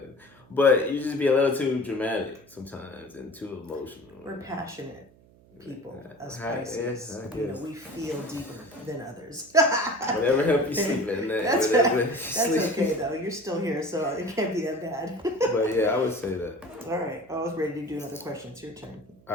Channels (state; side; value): noise; right; hum, 27 dB below the sound